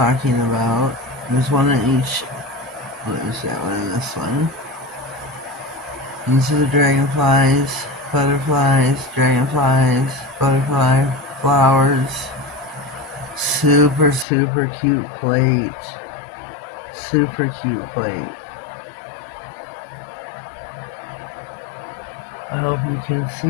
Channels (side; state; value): right; drops out; at 14.2 s